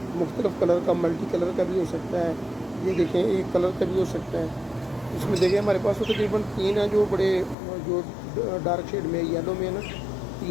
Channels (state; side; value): drops out; right; at 7.6 s